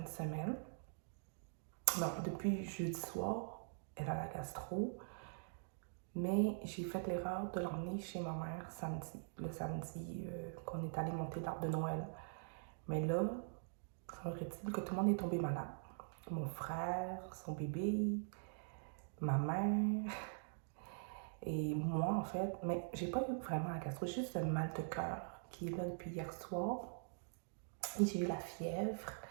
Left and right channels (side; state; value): left; silent; digital silence